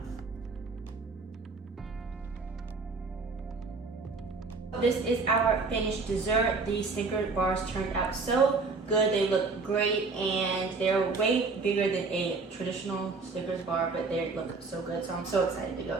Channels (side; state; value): left; quieter; 4.1 dB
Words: This is our finished dessert. These Snickers bars turned out so good. They look great, and they're way bigger than a traditional Snickers bar, but they look so good. So I'm so excited to go